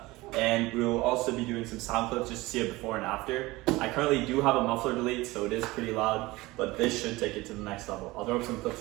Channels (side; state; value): left; quieter; 20.5 dB